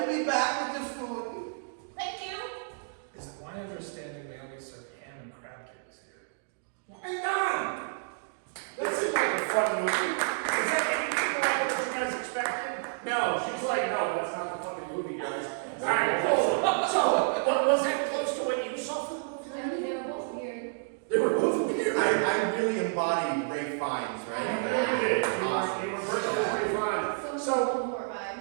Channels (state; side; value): silent; left; digital silence